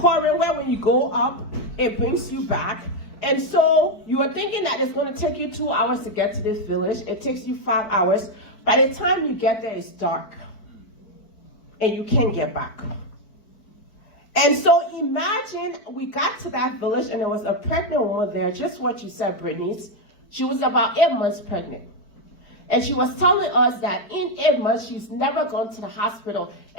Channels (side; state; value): right; late; 4.5 ms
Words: where when you go up, it brings you back. And so you are thinking that it's going to take you 2 hours to get to this village. It takes you 5 hours. By the time you get there, it's dark. And you can't get back. And so imagine we got to that village and there was a pregnant woman there, just what you said, Brittany. She was about 8 months pregnant. And she was telling us that in 8 months, she's never gone to the hospital.